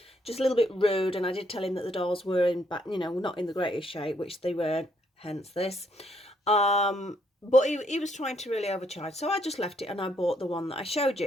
just a little bit rude. And I did tell him that the dolls were in back, not in the greatest shape, which they weren't, hence this. But he was trying to really overcharge, so I just left it and I bought the one that I showed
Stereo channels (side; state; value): both; normal; correlation 0.72